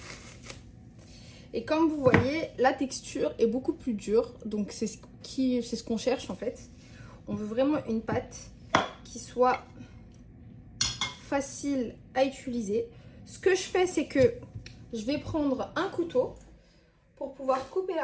Et comme vous voyez, la texture est beaucoup plus dure. Donc, c'est ce qu'on cherche en fait. On veut vraiment une pâte qui soit facile à utiliser. Ce que je fais, c'est que je vais prendre un couteau pour pouvoir couper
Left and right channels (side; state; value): both; identical; correlation 1.00